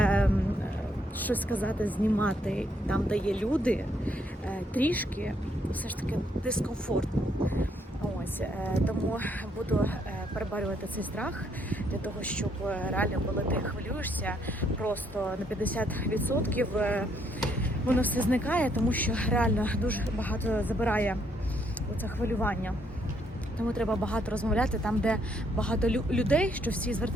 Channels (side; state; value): both; normal; correlation 0.71